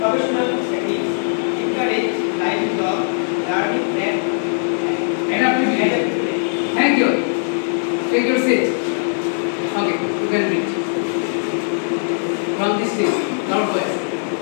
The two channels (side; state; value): right; silent; 64 dB below the other